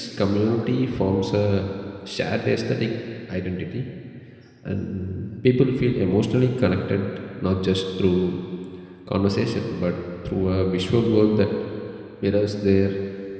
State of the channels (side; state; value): both; identical; correlation 1.00